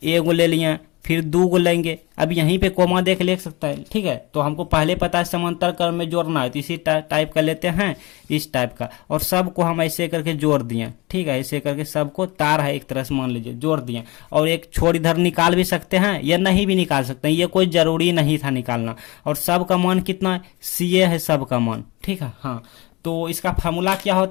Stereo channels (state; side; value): quieter; right; 23.5 dB